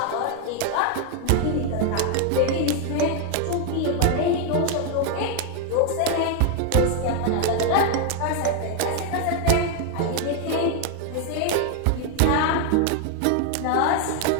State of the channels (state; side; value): different; both; correlation 0.00